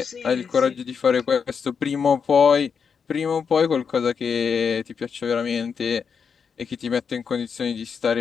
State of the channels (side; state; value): right; quieter; 6.3 dB